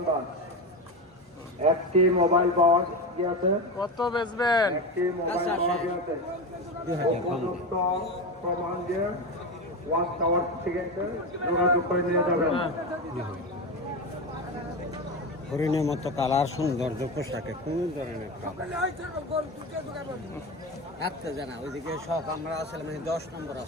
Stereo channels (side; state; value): both; normal; correlation 0.20